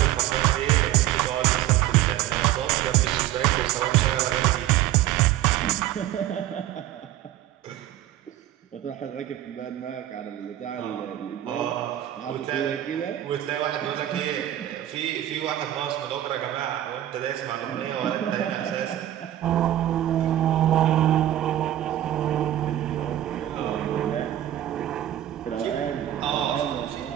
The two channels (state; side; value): quieter; left; 13.0 dB